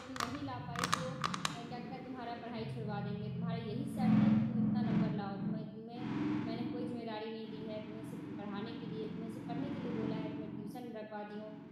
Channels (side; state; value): both; identical; correlation 1.00